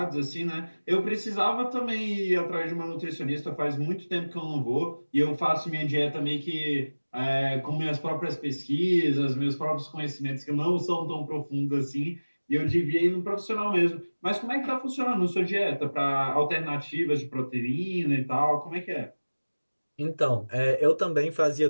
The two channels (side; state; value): both; inverted; correlation -1.00